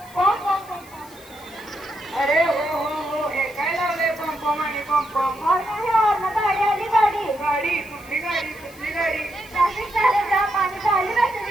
पम पम पम पम। अरे हो हे काय लावले पम पम आणि पम पम। गाडी आली गाडी गाडी कुठली गाडी कुठली गाडी। ट्रॅफिक झाले जाम आणि झाली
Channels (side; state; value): left; noise; hiss, 22 dB below the sound